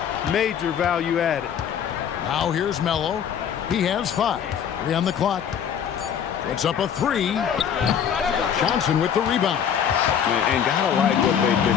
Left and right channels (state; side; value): quieter; right; 8.4 dB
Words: major value added. Now here's Melo. He has 5. 3 on the clock. Puts up a 3. Johnson with the rebound. And gotta like what they've